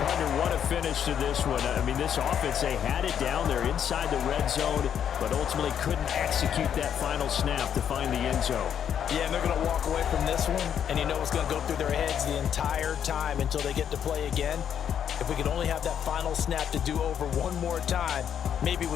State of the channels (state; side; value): quieter; right; 8.8 dB